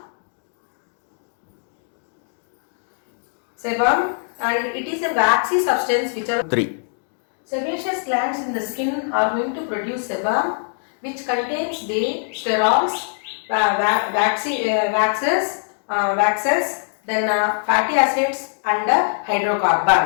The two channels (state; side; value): silent; right; digital silence